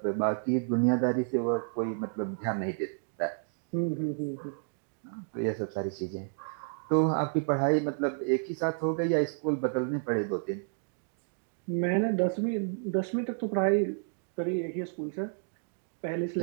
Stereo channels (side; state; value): left; silent; digital silence